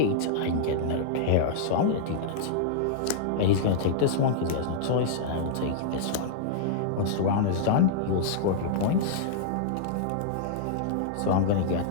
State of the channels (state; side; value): different; both; correlation -0.02